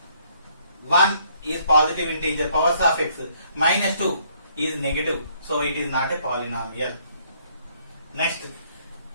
1 is positive integer, powers of x, minus 2 is negative, so it is not a polynomial. Next,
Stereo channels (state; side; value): inverted; both; correlation -0.66